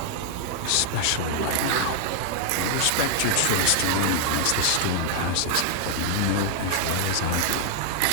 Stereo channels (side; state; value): both; different; correlation 0.00